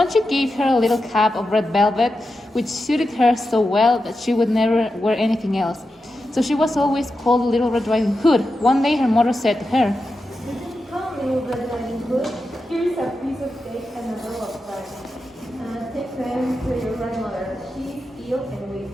she gave her a little cap of red velvet, which suited her so well that she would never wear anything else. So she was always called Little Red Riding Hood. One day her mother said to her, Come, little Red Riding Hood. Here's a piece of cake and a roll of bread. Take them to your grandmother. She's ill and weak,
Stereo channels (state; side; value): normal; both; correlation 0.89